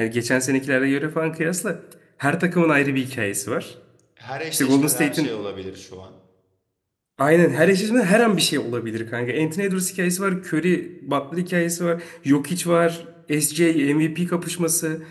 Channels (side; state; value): both; identical; correlation 1.00